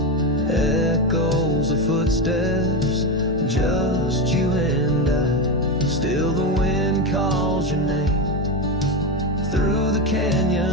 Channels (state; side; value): normal; both; correlation 0.15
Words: echoes of footsteps, just you and I. Still the wind calls your name through the